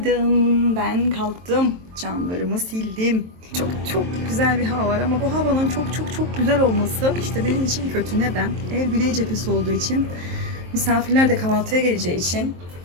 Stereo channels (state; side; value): late; left; 23 ms